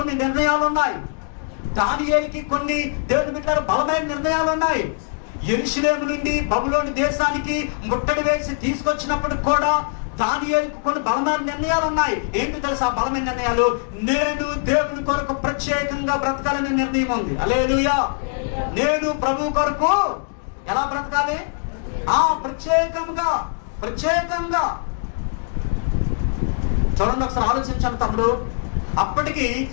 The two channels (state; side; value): silent; right; 60 dB below the other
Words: కొన్ని నిర్ణయాలు ఉన్నాయి. దానియేలుకి కొన్ని దేవుని బిడ్డల బలమైన నిర్ణయాలు ఉన్నాయి. యెరూషలేము నుండి బబులోను దేశానికి ముట్టడి వేసి తీసుకొచ్చినప్పుడు కూడా దానియేలుకు కొన్ని బలమైన నిర్ణయాలు ఉన్నాయి. ఏంటి తెలుసా బలమైన నిర్ణయాలు? నేను దేవుని కొరకు ప్రత్యేకంగా బ్రతకాలనే నిర్ణయం ఉంది. హల్లెలూయా. నేను ప్రభు కొరకు ఎలా బ్రతకాలి? ప్రత్యేకంగా చూడండి, ఒకసారి ఆలోచించాను తమ్ముడు. అప్పటికి